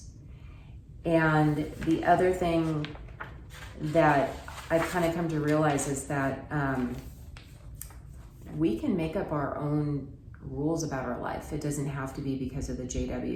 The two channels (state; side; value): identical; both; correlation 1.00